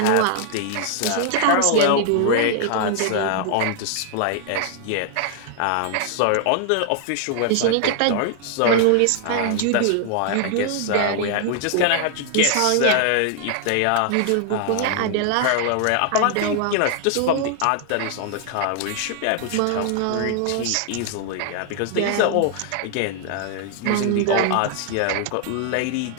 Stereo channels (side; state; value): both; different; correlation 0.00